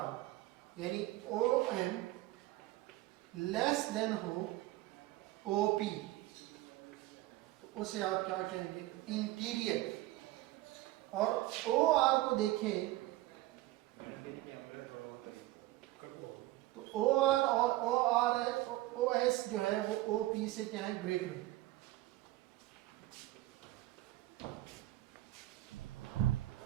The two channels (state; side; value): quieter; left; 17.2 dB